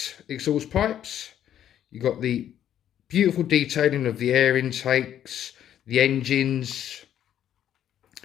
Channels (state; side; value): quieter; right; 10.6 dB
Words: exhaust pipes. You've got the beautiful detailing of the air intakes, the engines.